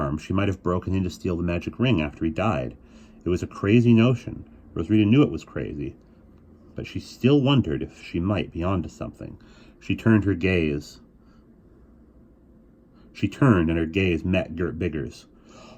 She might have broken in to steal the magic ring after he died. It was a crazy notion. Rosarita knew it was crazy, but she still wondered if she might be onto something. She turned, and her gaze met Gert Bigger's.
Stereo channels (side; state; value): both; identical; correlation 1.00